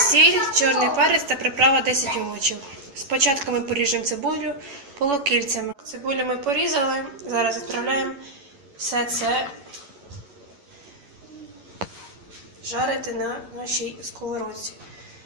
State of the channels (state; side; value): late; left; 11 ms